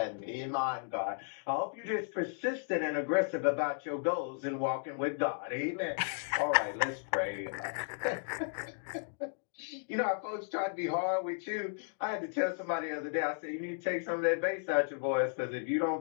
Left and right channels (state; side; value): silent; right; digital silence